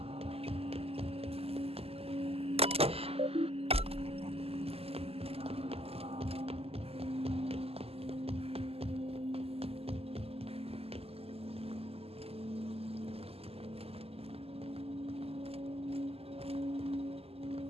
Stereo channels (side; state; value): left; late; 0.29 ms